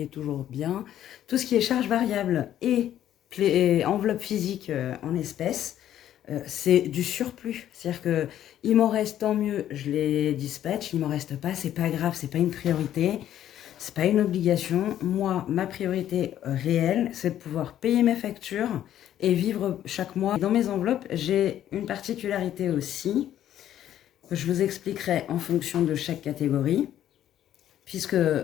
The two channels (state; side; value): quieter; right; 11.5 dB